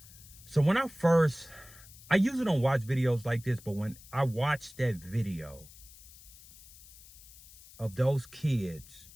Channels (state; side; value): noise; left; hiss, 20 dB below the sound